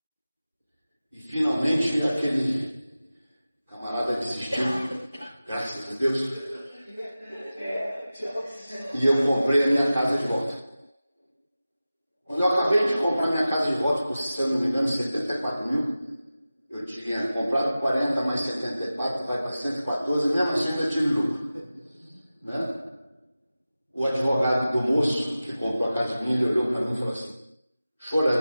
E finalmente aquele camarada desistiu, graças a Deus. E eu comprei a minha casa de volta. Quando eu acabei de comprar minha casa de volta, por se eu não me engano, 74 mil, eu tinha comprado 40 mais 74, vai para 114, mesmo assim ainda tive lucro. Né? O advogado do moço que comprou a casa minha, ele olhou para mim e falou assim,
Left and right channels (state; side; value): inverted; both; correlation -0.95